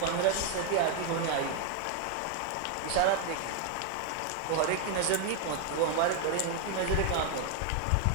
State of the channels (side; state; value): both; different; correlation 0.01